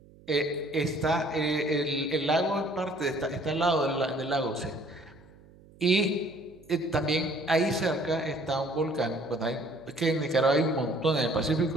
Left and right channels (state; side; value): noise; right; hum, 24 dB below the sound